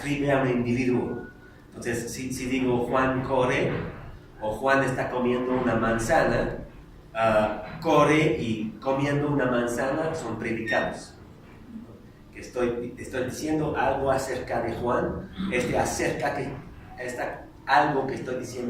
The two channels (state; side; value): identical; both; correlation 1.00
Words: a un individuo. Entonces, si digo Juan corre, o Juan está comiendo una manzana, corre y comiendo una manzana son predicados. Que estoy diciendo algo acerca de Juan, algo que estoy